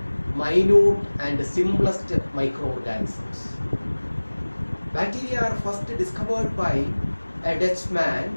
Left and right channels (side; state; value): both; inverted; correlation -1.00